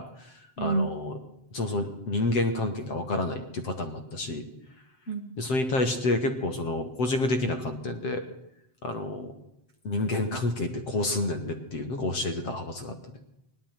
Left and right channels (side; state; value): right; late; 7.7 ms